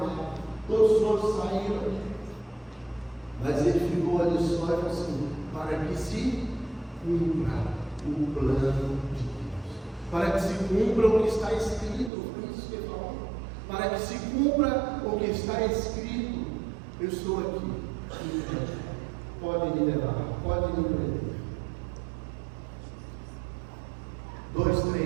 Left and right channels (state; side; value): drops out; left; at 12.1 s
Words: Todos os outros saíram. Mas ele ficou ali só e falou assim: para que se cumpra o plano de Deus. Para que se cumpra o que está escrito. Foi isso que ele falou. Para que se cumpra o que está escrito. Eu estou aqui. Podem me levar, podem me prender.